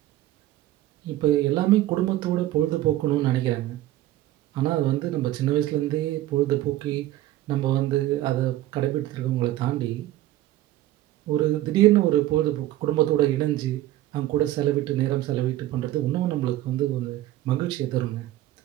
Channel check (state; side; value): quieter; left; 14.7 dB